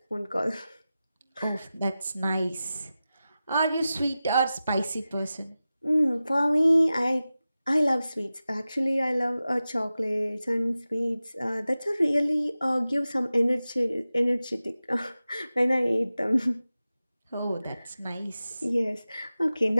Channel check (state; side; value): inverted; both; correlation -0.94